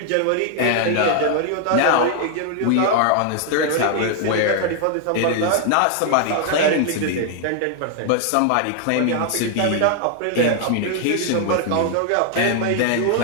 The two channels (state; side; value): different; both; correlation 0.00